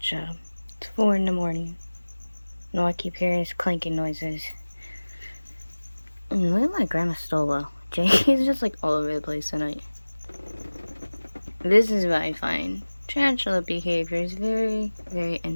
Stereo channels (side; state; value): both; inverted; correlation -1.00